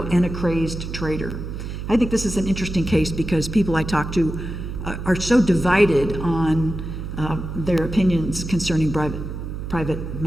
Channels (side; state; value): right; noise; hum, 7 dB below the sound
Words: and a crazed traitor. I think this is an interesting case because people I talk to are so divided on their opinions concerning Private